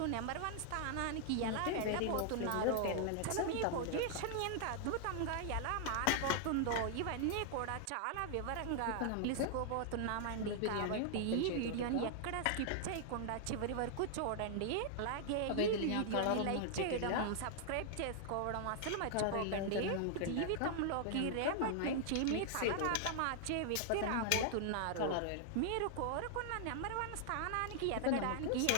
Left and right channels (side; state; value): both; different; correlation -0.01